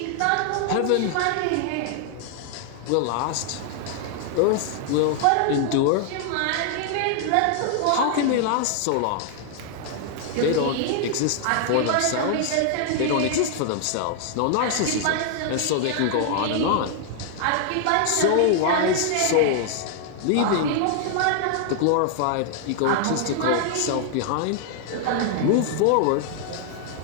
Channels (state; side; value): different; both; correlation 0.00